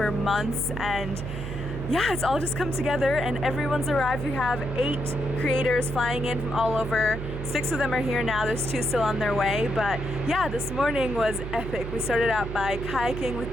months, and yeah, it's all just come together and everyone's arrived. We have 8 creators flying in from all over. 6 of them are here now, there's 2 still on their way. But yeah, this morning was epic. We started out by kayaking with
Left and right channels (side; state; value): right; noise; hum, 7 dB below the sound